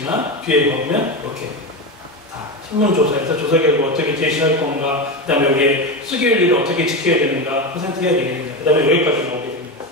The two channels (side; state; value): both; normal; correlation 0.18